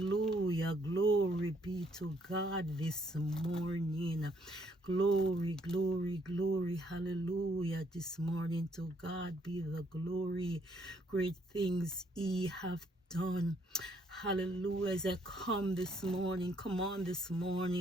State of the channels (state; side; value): normal; both; correlation 0.69